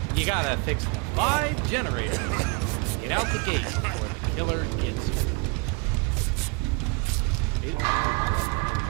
You gotta fix 5 generators to get out the gate before the killer gets you.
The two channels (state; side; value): quieter; left; 33.2 dB